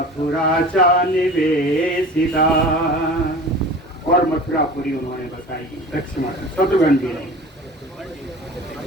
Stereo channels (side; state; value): both; normal; correlation 0.38